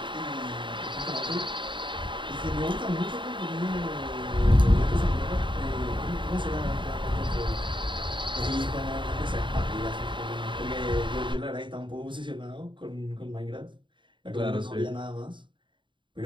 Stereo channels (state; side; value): late; left; 0.23 ms